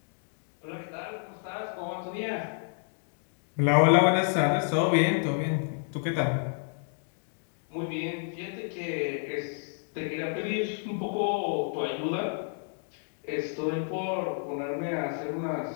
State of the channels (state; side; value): silent; right; 58 dB below the other